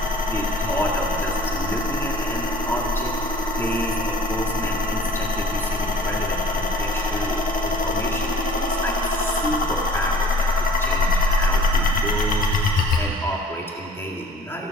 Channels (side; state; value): both; normal; correlation 0.50